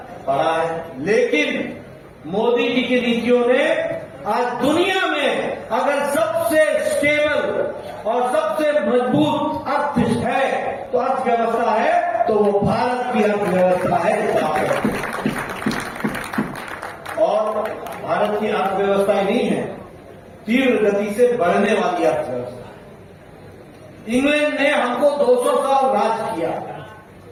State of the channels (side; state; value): both; identical; correlation 1.00